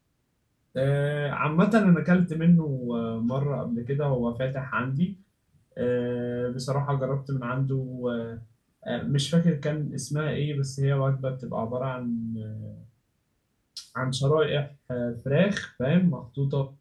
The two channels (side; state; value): both; identical; correlation 1.00